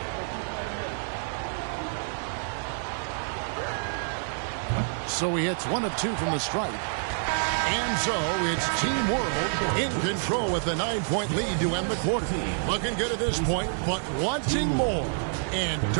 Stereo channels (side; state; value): left; silent; 55 dB below the other